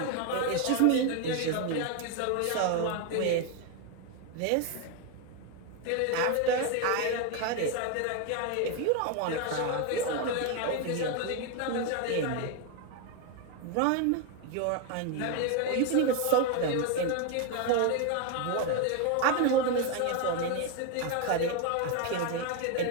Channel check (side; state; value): both; different; correlation 0.01